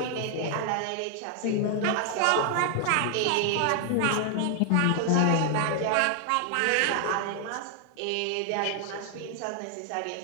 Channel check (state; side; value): different; both; correlation 0.00